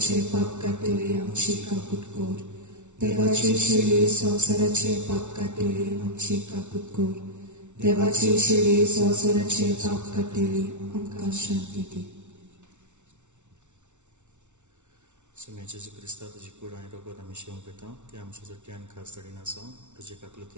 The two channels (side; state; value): left; late; 0.84 ms